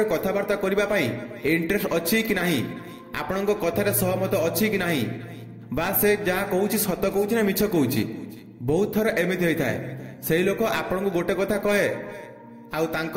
कथावार्ता करिबा पई इंटरेस्ट अछि कि नाही आपण कथारे सहमत अछि कि नाही बा से जहा कहूछि सत कहूछि ना मिछ कहूछि। बहुत थर एमिति होई थाए सेही लोक आपण को गोटे कथा कहे आउ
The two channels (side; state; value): both; identical; correlation 1.00